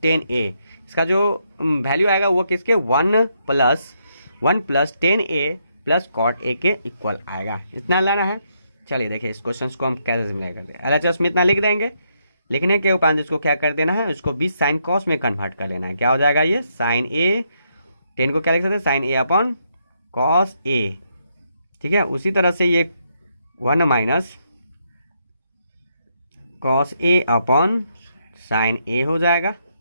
10a, इसका जो वैल्यू आएगा वो किसके, 1 प्लस 10a प्लस कॉट ए के इक्वल आएगा। इतना लाना है। चलिए देखिए इस क्वेश्चन को हम कैसे सिम्प्लीफाई करते हैं। LHS में इतना लिख देंगे, लिखने के उपरांत इसको क्या कर देना है, उसको 20 साइन कॉस में कन्वर्ट कर लेना है। क्या हो जाएगा, ये साइन ए, 10 को क्या लिख सकते हैं, sign A upon cos A. ठीक है, उसी तरह से ये 1 minus cos A upon sine ए हो जाएगा।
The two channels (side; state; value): both; inverted; correlation -0.77